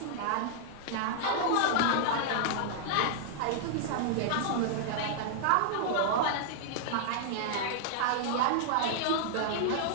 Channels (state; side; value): different; both; correlation -0.01